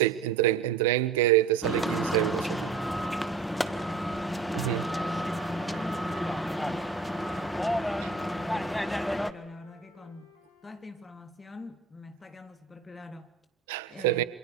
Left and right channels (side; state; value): left; quieter; 5.0 dB